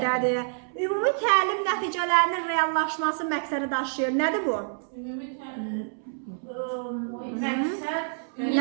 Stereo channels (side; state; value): left; silent; 60 dB below the other